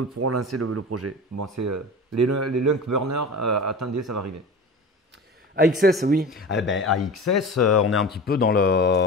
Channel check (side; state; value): both; normal; correlation 0.33